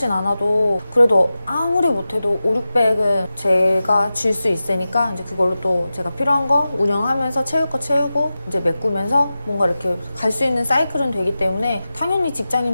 않아도 그래도 아무리 못해도 5, 600은 제가 줄 수 있으니까 이제 그걸로 또 제가 필요한 거 운영하면서 채울 거 채우고 이제 메꾸면서 뭔가 이렇게 갈 수 있는 사이클은 되기 때문에 당연히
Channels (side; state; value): both; inverted; correlation -0.94